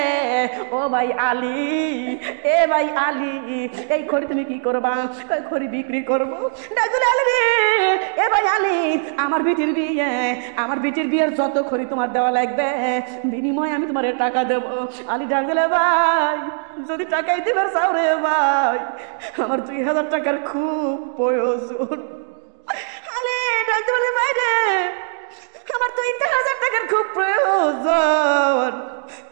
ও ভাই আলী, এ ভাই আলী এই খড়ি তুমি কি করবা? খড়ি বিক্রি করবো। আলী রে এ ভাই আলী আমার বিটির বিয়ে, আমার বিটির বিয়ের যত খড়ি তোমার দেওয়া লাগবে বিনিময়ে আমি তোমার টাকা দেবো। আলী ডাক দিলে, ভাই যদি টাকাই দিবে চাও রে ভাই, আমার 2000 টাকার খুব প্রয়োজন। আলী ডাক দিলে, ভাই রে আমার 2000 টাকার খুব প্রয়োজন,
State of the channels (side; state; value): left; silent; digital silence